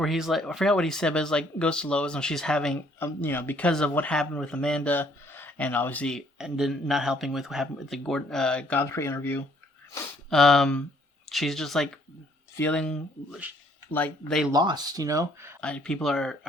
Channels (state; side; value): normal; both; correlation 0.64